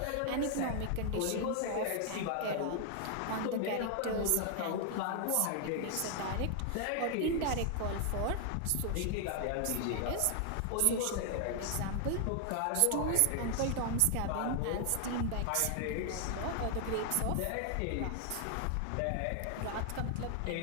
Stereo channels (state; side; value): different; both; correlation 0.00